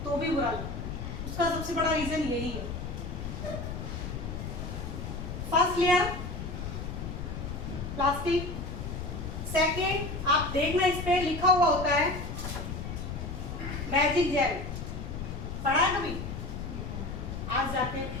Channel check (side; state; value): left; noise; rumble, 6 dB below the sound